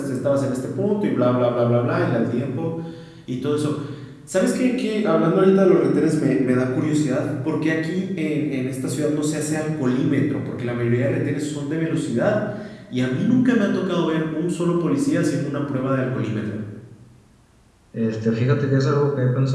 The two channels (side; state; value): both; identical; correlation 1.00